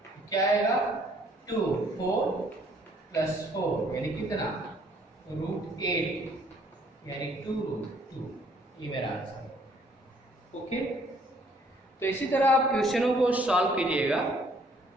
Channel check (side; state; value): both; normal; correlation 0.62